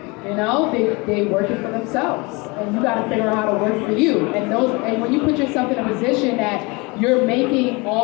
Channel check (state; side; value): quieter; right; 26.8 dB